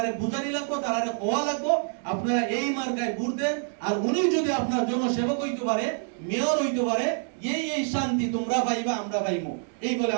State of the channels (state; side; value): silent; left; 58 dB below the other